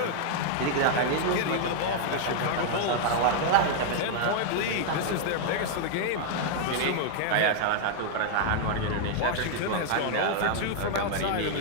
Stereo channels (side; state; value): both; different; correlation 0.00